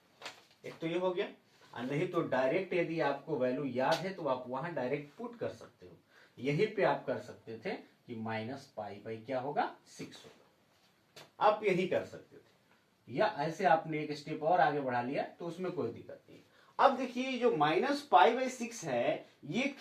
एक तो ये हो गया, और नहीं तो डायरेक्ट यदि आपको वैल्यू याद है तो आप वहां डायरेक्ट पुट कर सकते हो। यहीं पे आप कर सकते थे कि -π/, क्या होगा, 6 होगा, आप यही कर सकते थे। या ऐसे आपने एक स्टेप और आगे बढ़ा लिया तो उसमें कोई दिक्कत नहीं। अब देखिए जो -π/6 है, ये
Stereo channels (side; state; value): both; identical; correlation 1.00